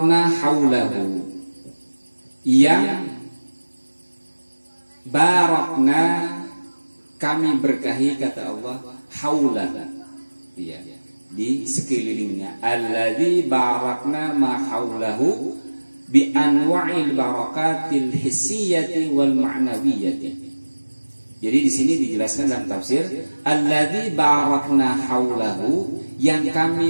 haulahu. Yang barakna kami berkahi kata Allah haulah. Ya. Di sekelilingnya. Alladzi barakna ma haulahu bi anwa'il barakatil hissiyati wal ma'nawiyyati. Jadi di sini dijelaskan dalam tafsir alladzi barakna haulahu, yang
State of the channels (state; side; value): inverted; both; correlation -1.00